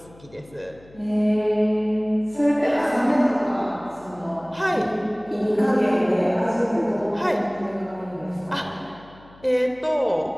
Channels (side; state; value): left; noise; hum, 24 dB below the sound